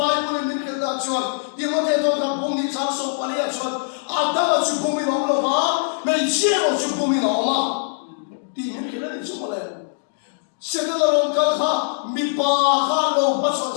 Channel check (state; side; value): silent; right; digital silence